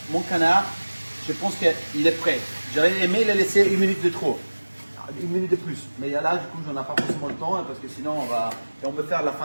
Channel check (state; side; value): inverted; both; correlation -1.00